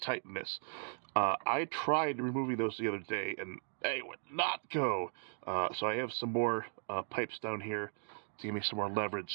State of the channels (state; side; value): silent; left; digital silence